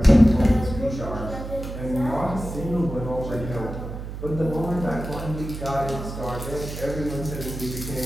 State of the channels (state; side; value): noise; right; hum, 8 dB below the sound